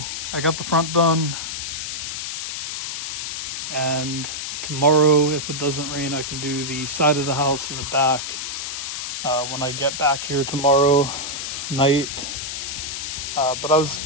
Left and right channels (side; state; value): left; noise; hiss, 5 dB below the sound